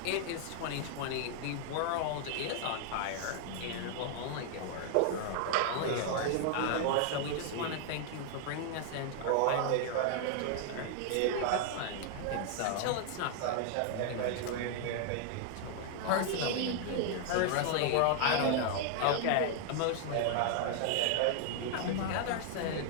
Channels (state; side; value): different; both; correlation 0.00